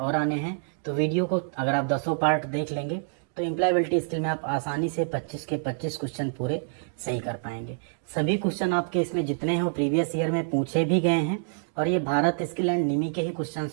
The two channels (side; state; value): left; silent; digital silence